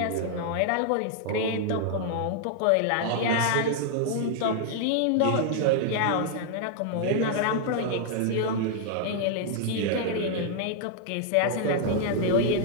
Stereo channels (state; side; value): different; both; correlation 0.00